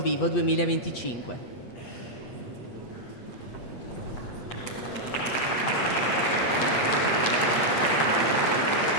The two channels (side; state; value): right; late; 8.4 ms